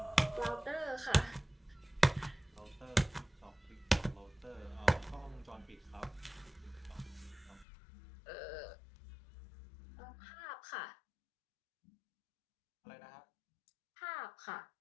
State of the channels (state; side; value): drops out; right; at 7.7 s